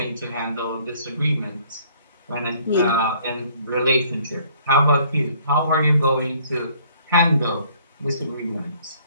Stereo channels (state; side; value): inverted; both; correlation -0.59